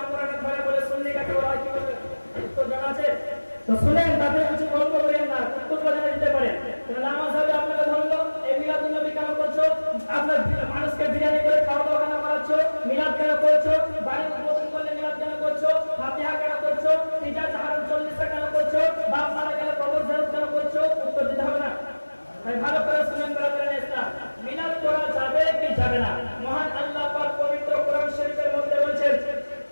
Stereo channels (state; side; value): inverted; both; correlation -1.00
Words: আমরানের ভাড়া বলে সুন্নি কাকে বলা হয় কি বলে উত্তর জানা আছে তো শুনেন, তাতে কিছু গল্প করেন না, উত্তর জানা দিতে পারেন। নামাজ হবে আপনাকে ধরলো, এই মিলাদুন নবী কেন করছো? আপনার মানুষকে বিরিয়ানি করে খাওয়া দাওয়া কেন করাচ্ছ? মিলাদ কেন করছো? বাড়ি উদ্বোধন করলে মিলাদ কেন করছো? ফাতিহা কেন করছো? তিজা চাহারুল 40টা কেন করছো? বাপ মারা গেলে কবর জিয়ারত কেন করছো? উত্তর দিতে হবে না। তাই ভালো করে শুনেন ব্রাদার ইসলাম, মিলাদ করা যাবে কি যাবে না? মহান আল্লাহ পাক পবিত্র কোরআন শরীফের মধ্যে বলেছেন